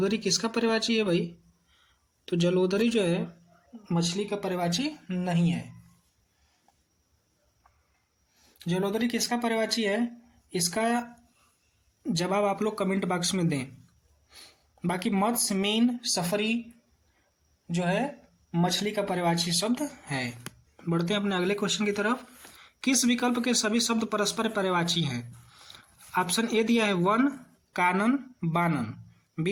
किसका पर्यायवाची है भाई? तो जलोदरी जो है मछली का पर्यायवाची नहीं है। जलोदरी किसका पर्यायवाची है? इसका जवाब आप लोग कमेंट बॉक्स में दें। बाकी मत्स्य, मीन, सफरी जो है मछली का पर्यायवाची शब्द है। बढ़ते हैं अपने अगले क्वेश्चन की तरफ। किस विकल्प के सभी शब्द परस्पर पर्यायवाची हैं? ऑप्शन ए दिया है वन, कानन, बानन।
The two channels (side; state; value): both; identical; correlation 1.00